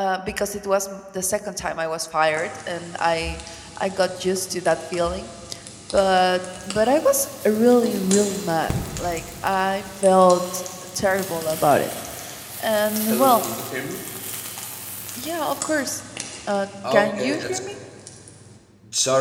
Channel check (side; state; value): both; identical; correlation 1.00